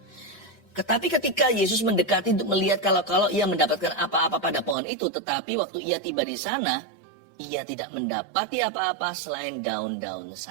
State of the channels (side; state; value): left; drops out; at 4.8 s